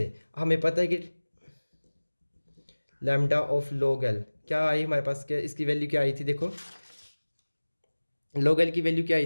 हमें पता है कि लैम्डा ऑफ log l क्या आई हमारे पास, क्या इसकी वैल्यू क्या आई थी, देखो log l की वैल्यू क्या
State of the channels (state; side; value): inverted; both; correlation -1.00